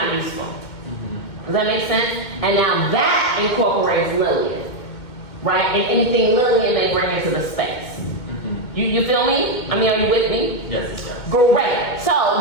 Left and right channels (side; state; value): right; late; 2.2 ms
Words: useful. Does that make sense? And now that incorporates Lillian, right? And anything Lillian may bring into the space. You feel me? I mean, are you with me? Yes, yes. Great. So